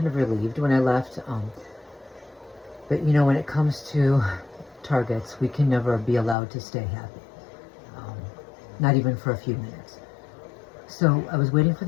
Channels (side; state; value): right; drops out; at 6.4 s